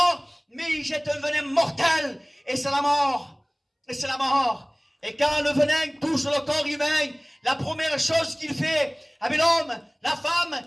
mais il jette un venin mortel, et c'est la mort. Et c'est la mort. Et quand le venin touche le corps humain, la première chose qu'il fait, avec l'homme, la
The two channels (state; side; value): identical; both; correlation 1.00